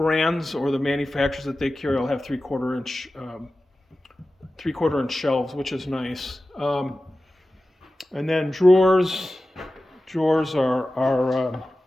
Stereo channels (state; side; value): normal; both; correlation 0.95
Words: or the manufacturers that they carry will have 3/4 inch 3/4 inch shelves, which is nice. And then drawers are